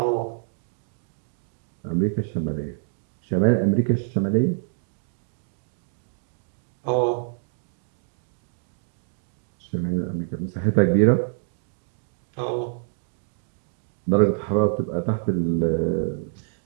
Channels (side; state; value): left; silent; digital silence